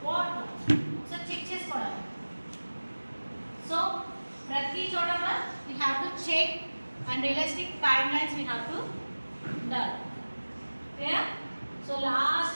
what, so check చేసుకోవడానికి. సో ప్రతి చోట we have to check and realistic timelines we have to done. ఓకేనా. సో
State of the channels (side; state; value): both; inverted; correlation -1.00